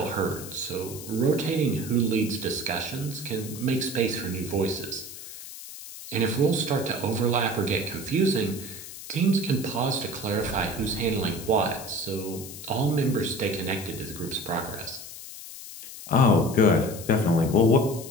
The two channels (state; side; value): noise; left; hiss, 13 dB below the sound